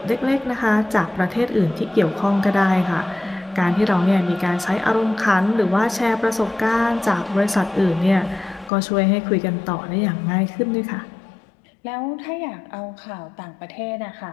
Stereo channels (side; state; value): right; drops out; at 8.7 s